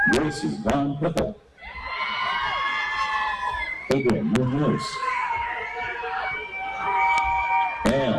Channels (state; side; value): identical; both; correlation 1.00